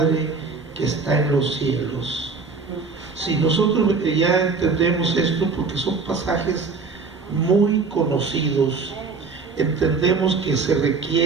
que está en los cielos. Si nosotros ya entendemos esto, porque son pasajes muy conocidos, entendemos que se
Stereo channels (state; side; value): quieter; left; 4.6 dB